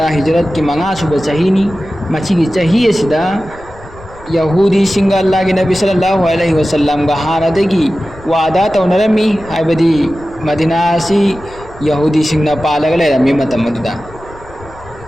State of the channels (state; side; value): noise; left; rumble, 20 dB below the sound